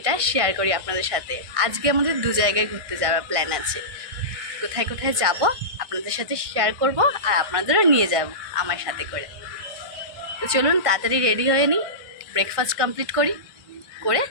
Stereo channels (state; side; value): late; left; 1.6 ms